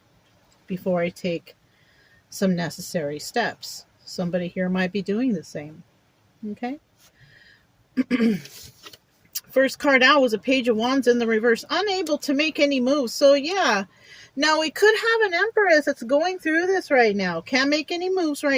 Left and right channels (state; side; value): identical; both; correlation 1.00